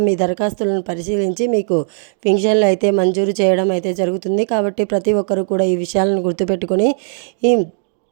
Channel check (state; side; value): silent; left; digital silence